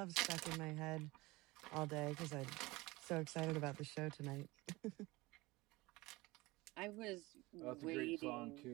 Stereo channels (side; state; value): left; quieter; 21.5 dB